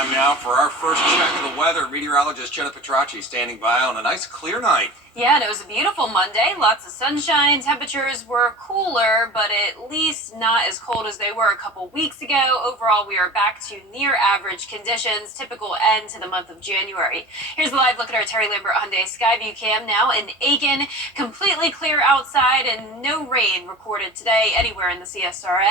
now for our first check of the weather. Meteorologist Jenna Petracci standing by on a nice clear night. Yeah, and it was a beautiful Monday. Lots of sunshine. Temperatures were cooler, but at least not as cold as they were a couple weeks ago. Overall, we are back to near average conditions, typical end to the month of January. Here's a live look at our Terry Lambert Hyundai Skyview Cam now in Aiken. Completely clear outside and no rain recorded today anywhere in the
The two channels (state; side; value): normal; both; correlation 0.36